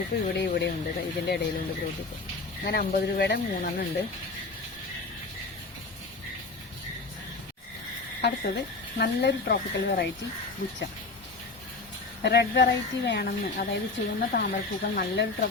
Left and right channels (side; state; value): right; quieter; 3.7 dB